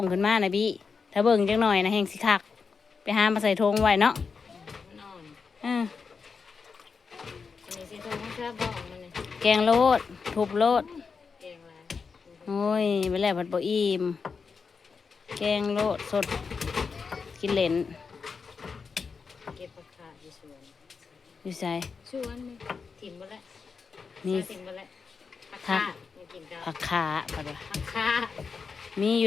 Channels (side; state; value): right; quieter; 5.2 dB